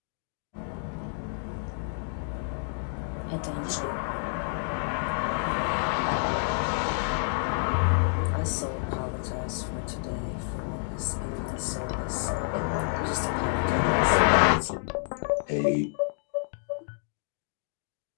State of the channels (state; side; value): silent; right; digital silence